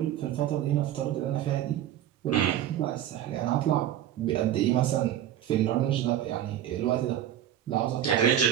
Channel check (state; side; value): quieter; left; 11.4 dB